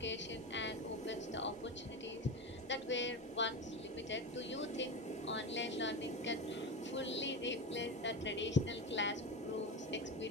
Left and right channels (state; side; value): normal; both; correlation 0.22